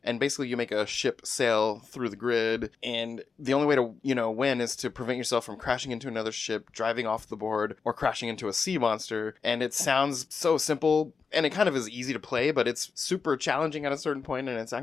and basically you make a ship sail through the grid, and the only way to, win is to prevent yourself from crashing into another ship, driving off the board, or crashing into a sea monster. And it sounds so simple, and it kind of is easy to play, but it's super challenging at a certain point, and it's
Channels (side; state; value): right; quieter; 5.2 dB